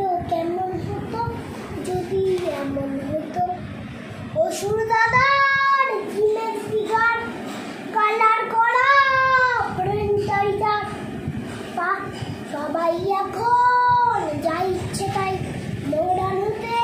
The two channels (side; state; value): both; identical; correlation 1.00